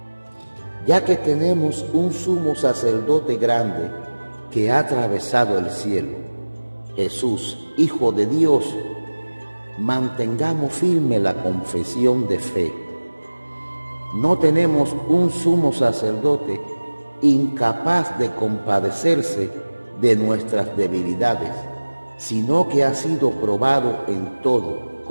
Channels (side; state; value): both; inverted; correlation -1.00